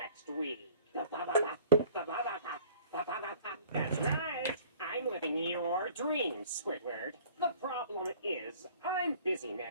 week. That's right. I'm living your dreams, Squidward. The problem is, I'm busy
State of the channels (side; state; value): both; inverted; correlation -0.50